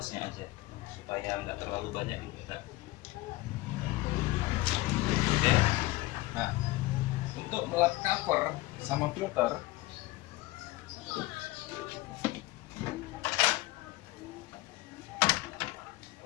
aja supaya nggak terlalu banyak kita. Oke. Nah, untuk melap cover sama filter,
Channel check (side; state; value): right; quieter; 19.5 dB